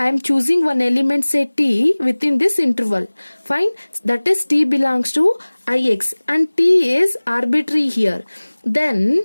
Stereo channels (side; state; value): both; inverted; correlation -1.00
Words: am choosing one element say T within this interval. Fine, that is T belongs to Ix and T is arbitrary here.